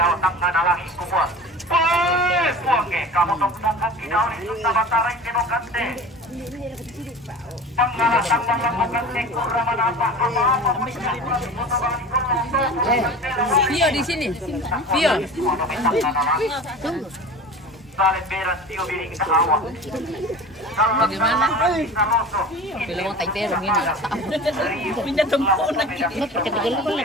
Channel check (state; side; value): normal; both; correlation 0.36